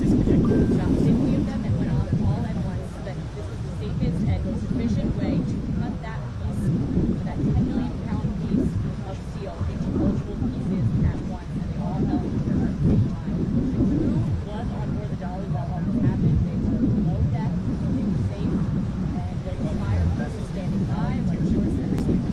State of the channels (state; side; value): identical; both; correlation 1.00